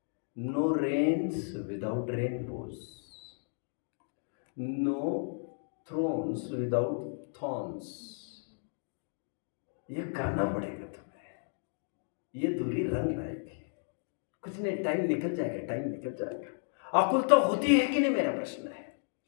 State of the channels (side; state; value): right; silent; digital silence